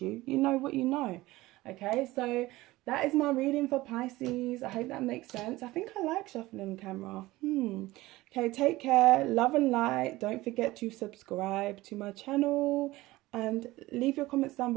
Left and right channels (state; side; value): quieter; left; 18.5 dB